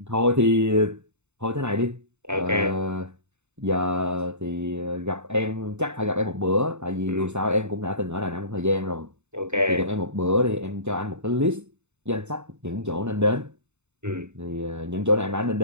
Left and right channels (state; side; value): late; left; 0.82 ms